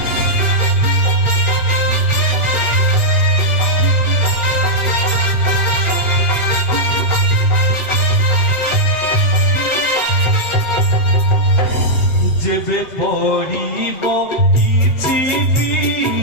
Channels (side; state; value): right; late; 8.3 ms